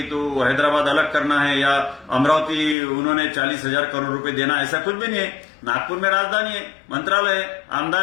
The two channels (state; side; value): drops out; right; at 2.8 s